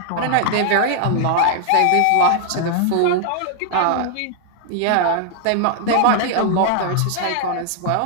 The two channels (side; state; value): both; different; correlation 0.00